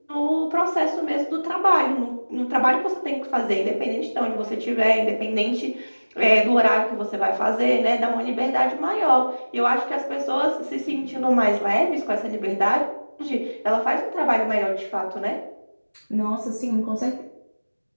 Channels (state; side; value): inverted; both; correlation -1.00